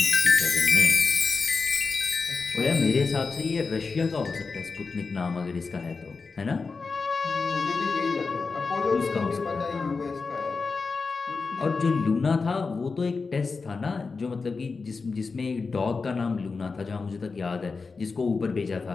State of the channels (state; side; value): quieter; right; 4.5 dB